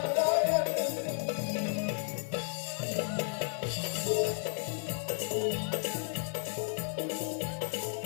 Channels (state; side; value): silent; right; digital silence